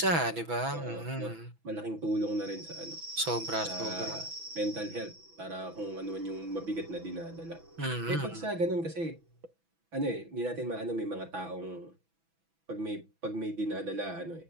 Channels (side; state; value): left; late; 6.1 ms